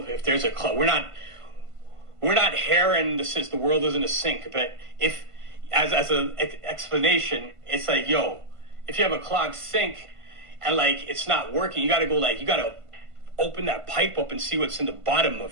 if there's a club, we're not here and this is the world isn't a sink. But if, as an explanation, it's like, yo, if you have a clogged sink and like it's not working, you got to open that pipe up and see what's in the bottom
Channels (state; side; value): late; left; 1.5 ms